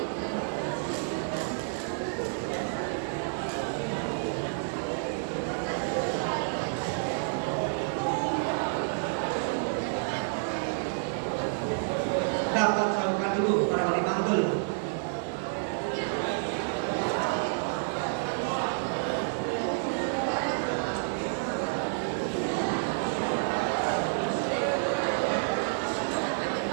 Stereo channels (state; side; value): silent; left; digital silence